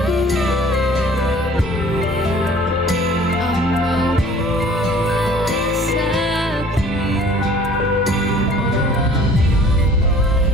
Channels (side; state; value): both; normal; correlation 0.51